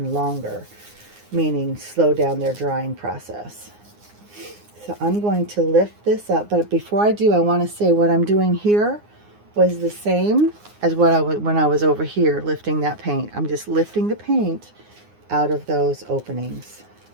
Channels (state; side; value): late; left; 9.7 ms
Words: longer, meaning slow down their drying process. So I'm going to lift this up, but before I do, I want to say what I'm doing here was the same as when I was over here lifting that paint. I'm just lifting the paint out of those openings.